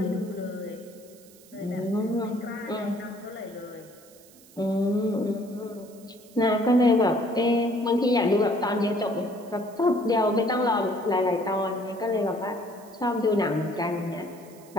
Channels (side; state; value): right; noise; hiss, 24 dB below the sound